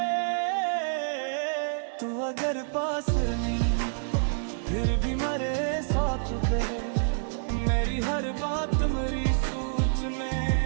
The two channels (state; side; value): silent; left; 59 dB below the other